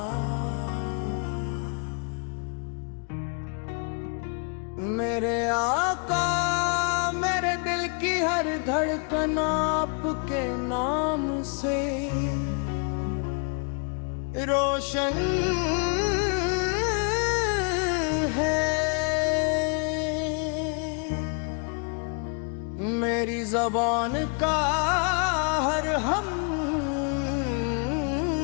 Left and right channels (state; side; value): quieter; right; 39.6 dB